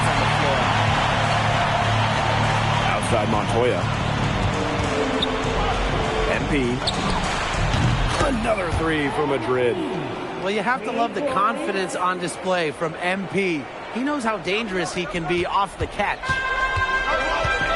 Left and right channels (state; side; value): identical; both; correlation 1.00